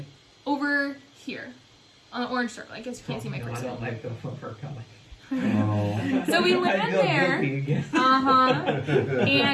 Over here on the orange circle. I guess you can't see my No, I cursor. don't like the over color. Oh. So we I land feel there. guilty again.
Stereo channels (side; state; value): both; identical; correlation 1.00